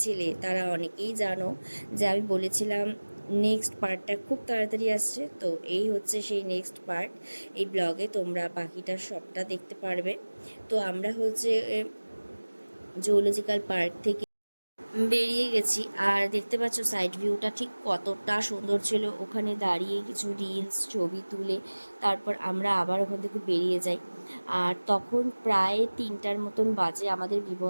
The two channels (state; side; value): inverted; both; correlation -1.00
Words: তারা অনেকেই জানো যে আমি বলেছিলাম নেক্সট পার্টটা খুব তাড়াতাড়ি আসছে। তো এই হচ্ছে সেই নেক্সট পার্ট। এই ব্লগে তোমরা বাকিটা সবটা দেখতে পারবে। তো আমরা হচ্ছে জুওলজিক্যাল পার্ক থেকে বেরিয়ে গেছি আর দেখতে পাচ্ছ সাইড ভিউটা ঠিক কতটা সুন্দর ছিল। ওখানে দাঁড়িয়ে কিছু রিলস ছবি তুলে তারপর আমরা আবার ওখান থেকে বেরিয়ে যাই। আর তখন প্রায় 3টার মতন বাজে। আমাদের